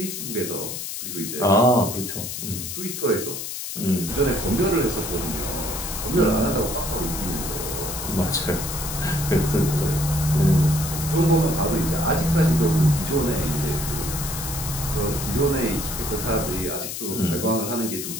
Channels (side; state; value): left; noise; hiss, 6 dB below the sound